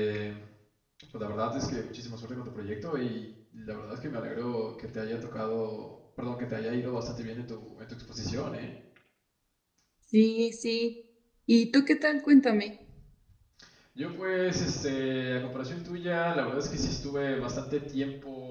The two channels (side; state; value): both; identical; correlation 1.00